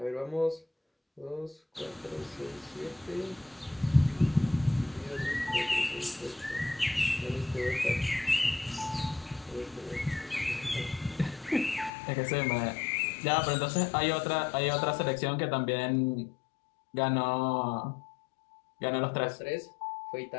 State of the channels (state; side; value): drops out; right; at 11.9 s